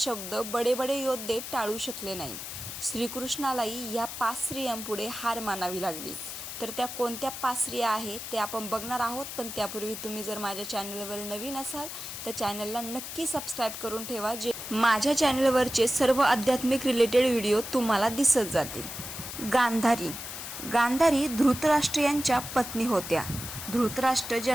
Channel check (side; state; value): left; noise; hiss, 8 dB below the sound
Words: बडे बडे योद्धे टाळू शकले नाही. श्रीकृष्णालाही या 5 स्त्रियांपुढे हार मानावी लागली. तर त्या कोणत्या 5 स्त्रिया आहेत ते आपण बघणार आहोत. पण त्यापूर्वी तुम्ही जर माझ्या चॅनलवर नवीन असाल तर चॅनलला नक्की सबस्क्राईब करून ठेवा, जे माझ्या चॅनलवरचे सर्व आध्यात्मिक रिलेटेड व्हिडिओ तुम्हाला दिसत जातील. गांधारी धृतराष्ट्र यांच्या पत्नी होत्या. धृतराष्ट्र